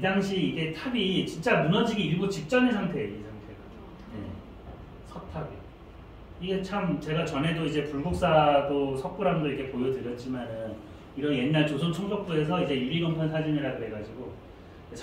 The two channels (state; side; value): identical; both; correlation 1.00